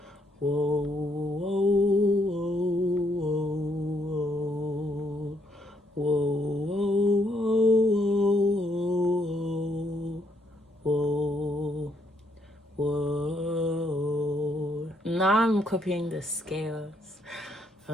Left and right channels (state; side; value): normal; both; correlation 0.73